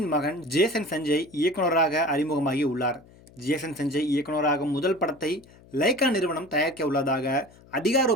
மகன் ஜேசன் சஞ்சய் இயக்குனராக அறிமுகமாகி உள்ளார். ஜேசன் சஞ்சய் இயக்குனராகும் முதல் படத்தை லைகா நிறுவனம் தயாரிக்க உள்ளதாக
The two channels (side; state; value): left; noise; hum, 25 dB below the sound